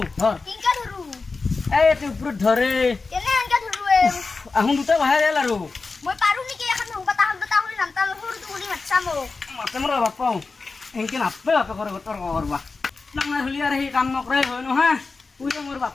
ধৰ কিনকা ধৰু এই এতে ওপৰত ধৰে কেনে আনকা ধৰু আহুন দুটা বাহিৰ গেল আৰু মই পাৰো নেকি এখন সংকটা হলি নামতা সৰুটো কৰি মাতছা মোক মাতে মোৰ বাপাও এনকে নাপে বাপে কৰে তৰ্ক কৰবা ডাঙৰ হলি আৰু সেই কাম নকৰাই হয় নহয় তুই মোৰ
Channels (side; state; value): right; quieter; 4.1 dB